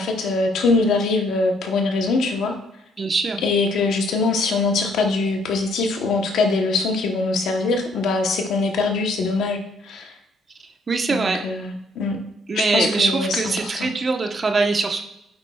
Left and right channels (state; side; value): normal; both; correlation 0.67